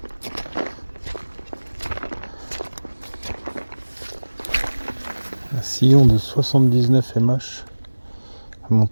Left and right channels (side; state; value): both; inverted; correlation -1.00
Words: Un sillon de 79 MH